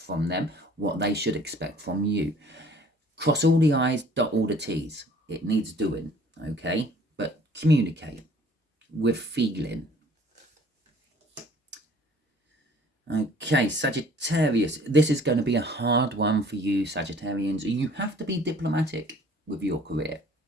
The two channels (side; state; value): both; normal; correlation 0.54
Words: them, what they should expect from you. Cross all the I's, dot all the T's. It needs doing, okay? But communicate with feeling. Okay, Sagittarius. This is going to be a hard one for you, Sagittarians. You have to be diplomatic with your career,